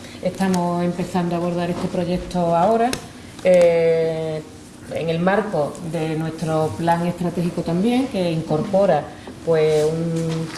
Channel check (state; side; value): identical; both; correlation 1.00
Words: Estamos empezando a abordar este proyecto ahora, en el marco de nuestro plan estratégico también, que incorpora pues